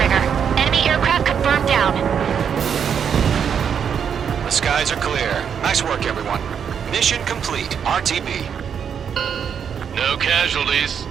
Enemy aircraft confirmed down. The skies are clear. Nice work, everyone. Mission complete. RTB. No casualties.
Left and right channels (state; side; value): quieter; left; 7.6 dB